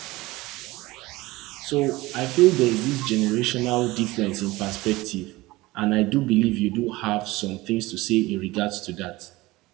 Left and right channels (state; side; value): quieter; left; 20.0 dB